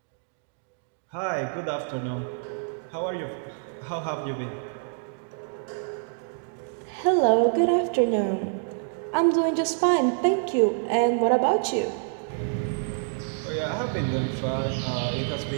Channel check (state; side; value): silent; left; digital silence